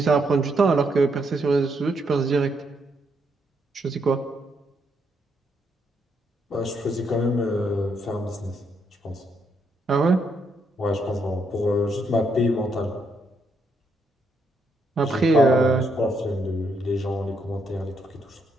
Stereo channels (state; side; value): normal; both; correlation 0.76